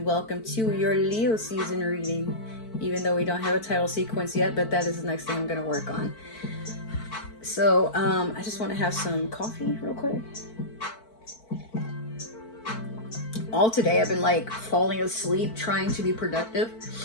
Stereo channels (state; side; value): late; right; 4.5 ms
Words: welcome to your Leo season reading. Even though we don't have a title sequence yet, but that is the next thing I'm going to work on. So I just want to have some coffee real quick. All today I've been like falling asleep trying to be productive.